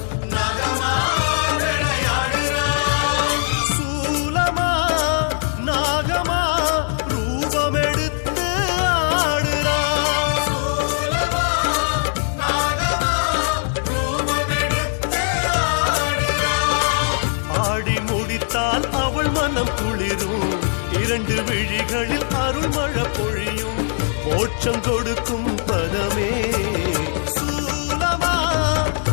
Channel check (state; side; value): silent; right; 59 dB below the other